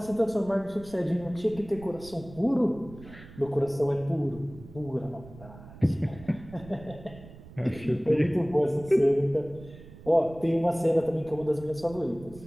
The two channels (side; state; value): right; noise; rumble, 18 dB below the sound